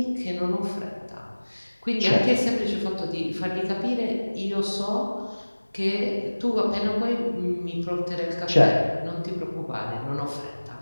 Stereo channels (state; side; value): inverted; both; correlation -1.00